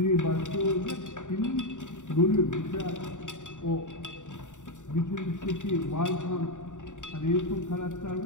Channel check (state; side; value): late; right; 0.86 ms